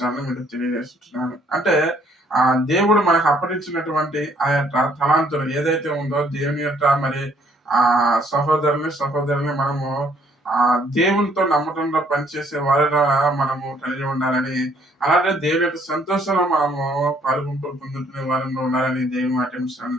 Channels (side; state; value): both; normal; correlation 0.65